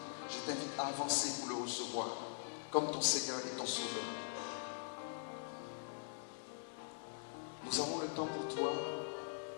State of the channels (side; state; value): right; silent; digital silence